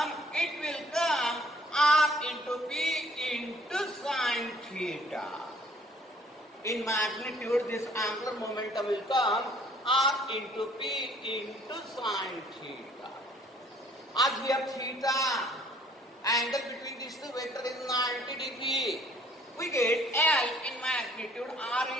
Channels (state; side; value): normal; both; correlation 0.59